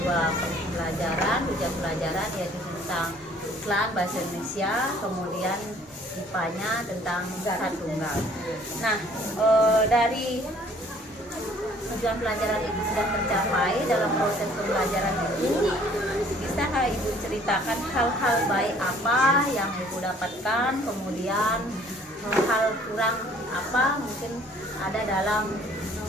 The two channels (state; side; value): normal; both; correlation 0.57